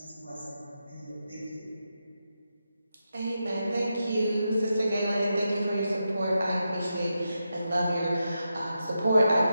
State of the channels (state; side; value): inverted; both; correlation -0.87